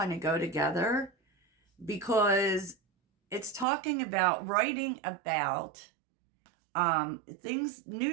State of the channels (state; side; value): drops out; left; at 3.7 s